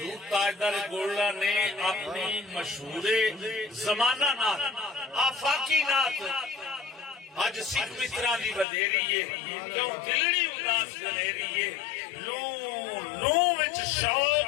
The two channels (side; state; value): right; drops out; at 8.7 s